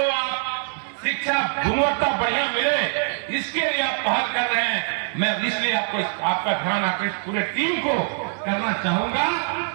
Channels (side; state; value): left; silent; 61 dB below the other